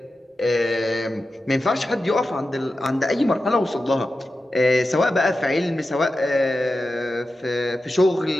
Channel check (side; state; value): both; normal; correlation 0.92